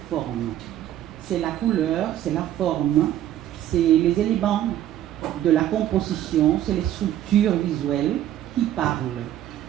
formes. C'est la couleur, c'est la forme, c'est les éléments de la composition, c'est les structures visuelles qui parlent.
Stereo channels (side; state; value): left; quieter; 12.1 dB